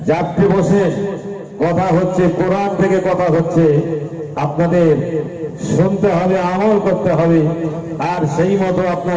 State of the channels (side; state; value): both; identical; correlation 1.00